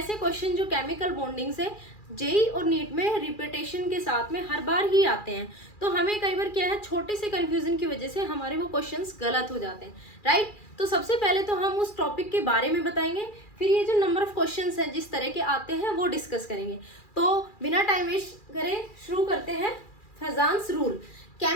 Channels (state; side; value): late; right; 2.4 ms